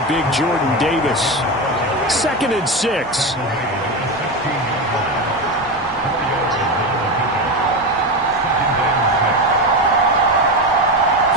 big Jordan Davis. 2nd and 6.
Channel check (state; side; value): normal; both; correlation 0.17